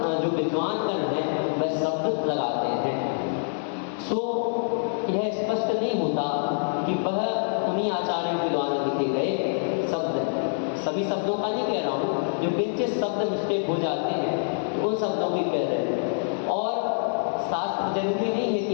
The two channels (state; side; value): silent; right; digital silence